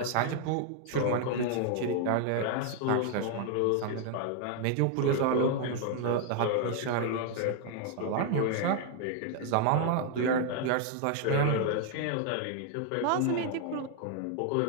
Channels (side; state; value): both; different; correlation 0.00